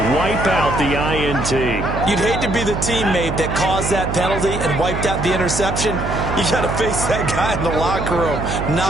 Wipe out the INT. You'd hate to be the teammate that caused that penalty and wiped out the interception. You got to face that guy in the locker room.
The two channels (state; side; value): noise; right; hum, 4 dB below the sound